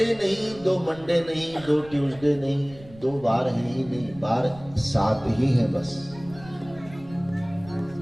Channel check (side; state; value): right; noise; rumble, 20 dB below the sound